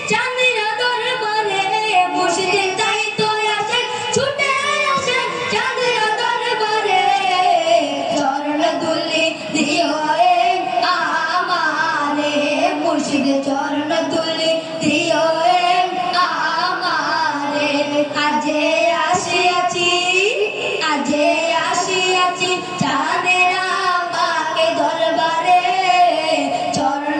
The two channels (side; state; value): both; identical; correlation 1.00